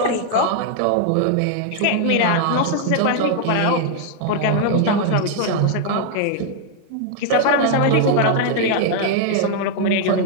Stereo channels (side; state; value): both; different; correlation 0.00